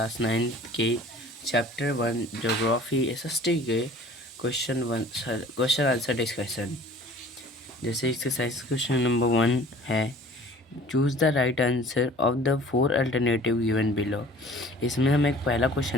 9 के चैप्टर 1 ज्योग्राफी एसएसटी के क्वेश्चन आंसर डिस्कशन। जैसे एक्सरसाइज क्वेश्चन नंबर 1 है, choose the right answer of the 4 alternative given below. इसमें हमें एक पहला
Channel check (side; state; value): both; normal; correlation 0.48